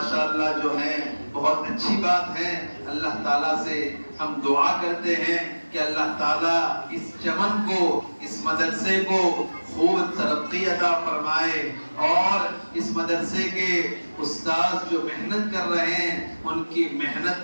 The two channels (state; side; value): inverted; both; correlation -1.00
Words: جو ہے بہت اچھی بات ہے. اللہ تعالیٰ سے ہم دعا کرتے ہیں کہ اللہ تعالیٰ اس چمن کو, اس مدرسے کو خوب ترقی عطا فرمائے, اور اس مدرسے کے استاد جو محنت کر رہے ہیں ان کی